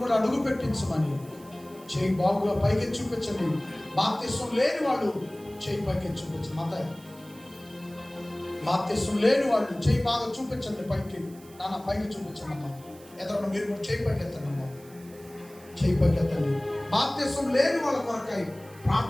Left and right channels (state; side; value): noise; right; hiss, 23 dB below the sound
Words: కూడా అడుగు పెట్టించమని చేయి బాగుగా పైకి చూపించండి. బాప్తిస్మం లేని వాళ్ళు చేయి పైకి చూపించండి. బాప్తిస్మం లేని వాళ్ళు చేయి బాగా చూపించండి పైకి. నాన్న పైకి చూపించండి అమ్మా. ఎదురు మీరు కూడా చేయి పైకి ఎత్తండి అమ్మా. చేయి పైకి ఎత్తండి. బాప్తిస్మం లేని వాళ్ళ కొరకై